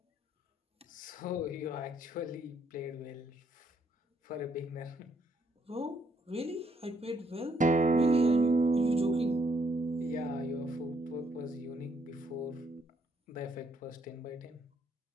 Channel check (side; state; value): both; normal; correlation 0.71